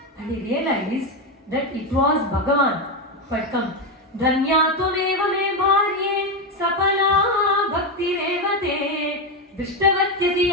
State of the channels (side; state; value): both; normal; correlation 0.10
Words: And he realized that it was Bhagavan who had come. Dhanya tumeva me bharye sapala bhakti revate